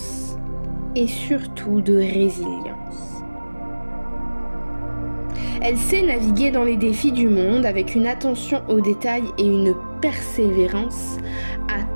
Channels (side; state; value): both; inverted; correlation -1.00